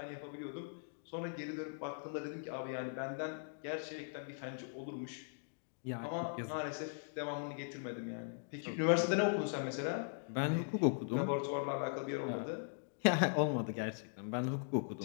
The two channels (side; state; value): right; silent; digital silence